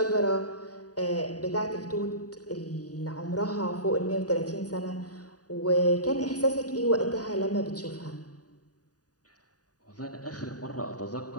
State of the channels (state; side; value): late; right; 0.68 ms